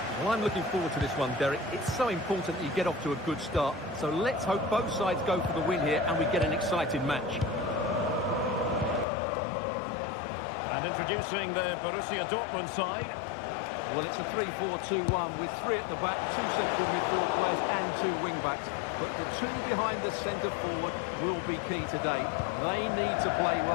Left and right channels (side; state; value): right; drops out; at 9.1 s